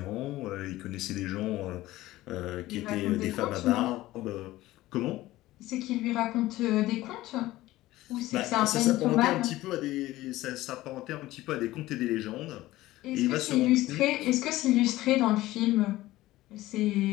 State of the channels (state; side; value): quieter; right; 16.8 dB